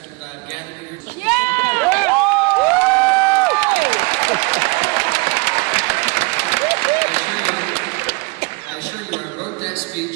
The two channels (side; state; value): left; quieter; 28.0 dB